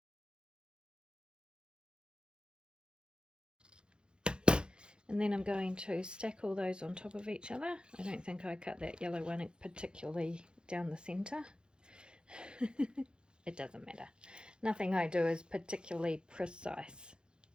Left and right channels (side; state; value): left; late; 0.050 ms